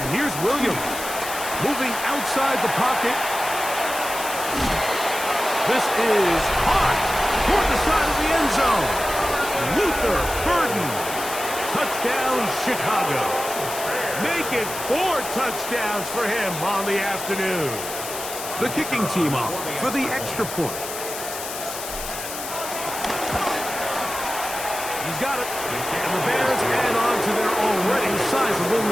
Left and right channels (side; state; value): left; noise; hiss, 8 dB below the sound